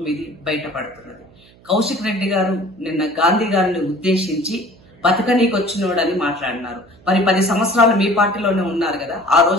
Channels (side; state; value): right; noise; hum, 27 dB below the sound